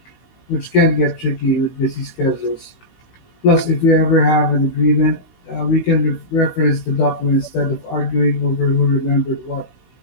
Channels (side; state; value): right; late; 16 ms